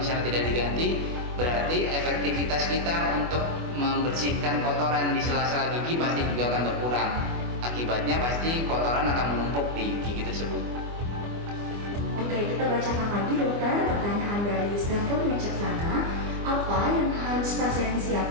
tidak diganti, berarti efektivitas kita untuk membersihkan kotoran di sela-sela gigi pasti juga akan berkurang. Akibatnya pasti kotoran akan menumpuk di gigi tersebut. Oke, kita bacakan lagi dokter pertanyaan dari Stanford Wicaksana. Apa yang harus pasien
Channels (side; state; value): left; late; 24 ms